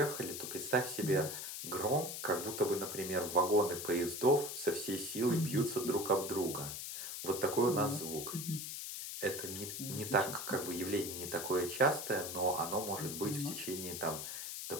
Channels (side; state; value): left; noise; hiss, 6 dB below the sound